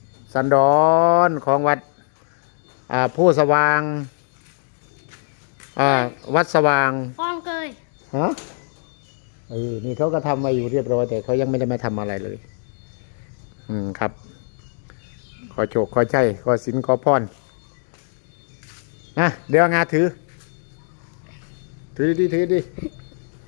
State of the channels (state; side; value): silent; right; digital silence